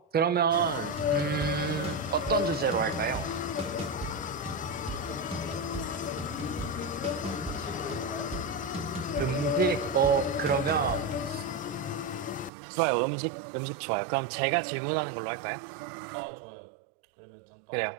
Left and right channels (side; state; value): left; drops out; at 12.5 s